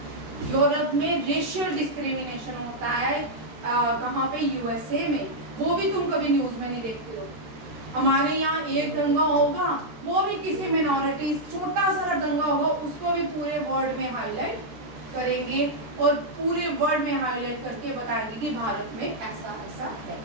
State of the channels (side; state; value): left; late; 13 ms